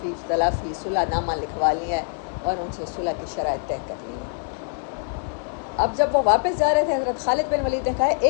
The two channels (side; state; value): right; silent; digital silence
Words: تلافی صلح نامہ لکھوا لیا ہے اور ان سے صلح کی شرائط طے کر لی ہیں. اب جب وہ واپس جا رہے تھے حضرت خالد بن ولید نے کہا